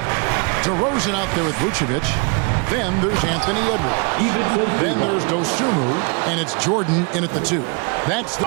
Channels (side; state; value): left; quieter; 33.4 dB